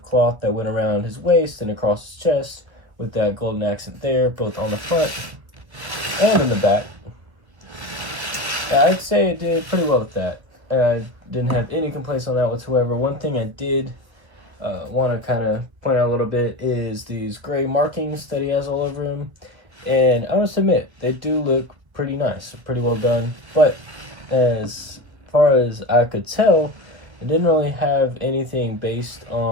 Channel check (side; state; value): left; late; 1.3 ms